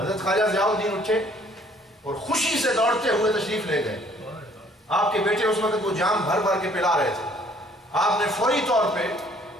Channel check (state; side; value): normal; both; correlation 0.59